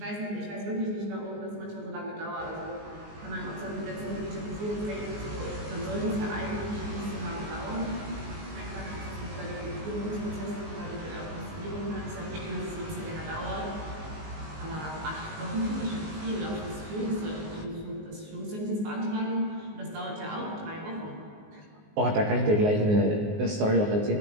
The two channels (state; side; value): late; left; 19 ms